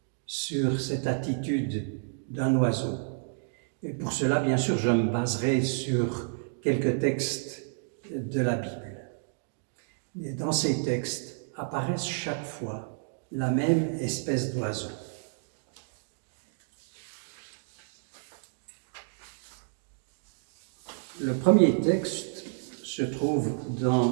sur cette attitude d'un oiseau. Et pour cela, bien sûr, je me baserai sur quelques textes de la Bible. Et dans ces textes apparaissent chaque fois la même espèce d'oiseau. Le premier texte se trouve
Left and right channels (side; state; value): left; silent; digital silence